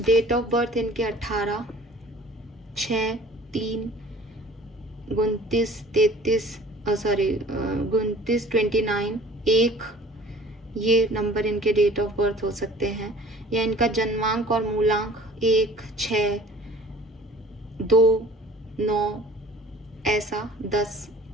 ऑफ बर्थ इनके 18, 6, 3, 29, 29, 29, 1, ये नंबर इनके डेट ऑफ बर्थ हो सकते हैं। या इनका जन्मांक और मूलांक 1, 6, 2, 9, ऐसा 10,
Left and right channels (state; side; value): normal; both; correlation 0.49